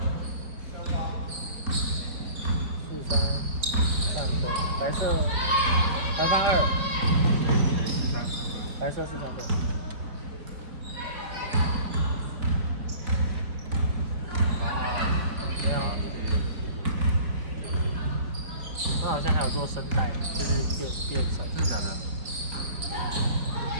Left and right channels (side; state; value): left; late; 4.7 ms